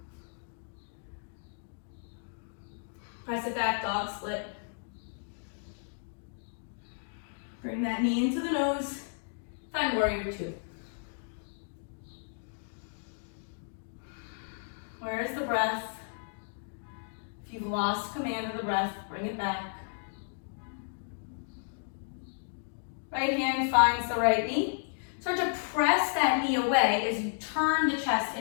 Press it back, dog split. Bring that knee into the nose. Find warrior two. Where is the breath? If you've lost command of the breath, bring it back. Right hand finds the right knee. Start to press that knee away as you turn the chest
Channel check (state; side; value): silent; right; digital silence